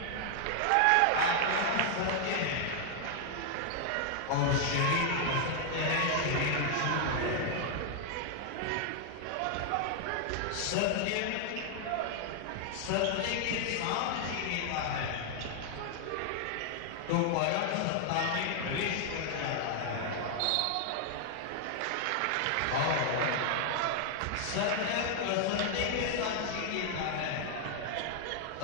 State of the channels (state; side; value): different; both; correlation 0.00